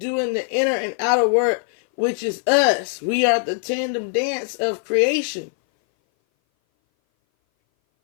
the inner and outer work, which is us. We are the tandem dance of creation.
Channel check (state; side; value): silent; right; 59 dB below the other